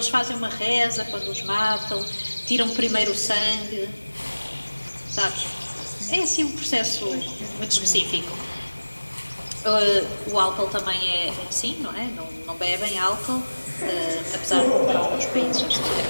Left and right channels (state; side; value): inverted; both; correlation -1.00